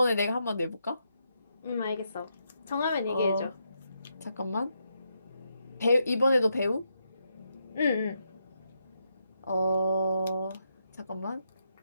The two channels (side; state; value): both; inverted; correlation -0.81